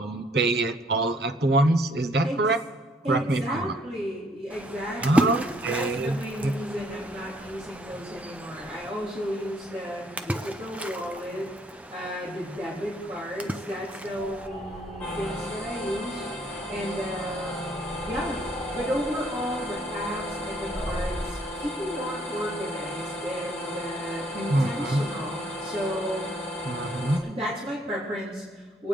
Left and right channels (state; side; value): normal; both; correlation 0.65